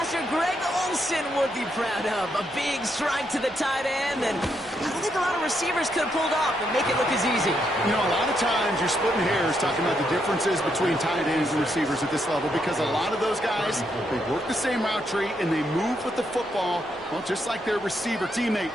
Greg Olson would be proud of. A big strike to the tight end, and I don't think a lot of receivers could have pulled off and make it look as easy. You know, a lot of times you're splitting hairs talking about the differences between tight ends and receivers at this level because a lot of those guys, they work the same route tree and they move with the football, well, just like their receiver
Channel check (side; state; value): both; normal; correlation 0.78